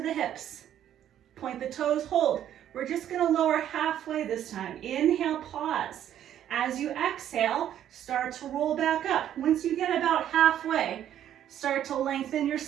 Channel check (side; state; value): left; quieter; 10.8 dB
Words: the hips. Point the toes, hold. We're just going to lower halfway this time. Inhale, pause. As you exhale, start to roll back up. Once you get about halfway, start to lengthen your